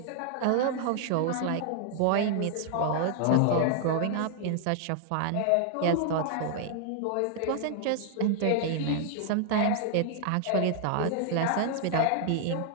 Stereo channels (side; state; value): both; different; correlation 0.00